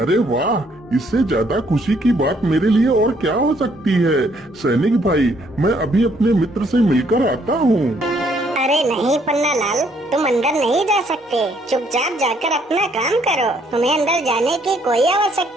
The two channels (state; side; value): normal; both; correlation 0.67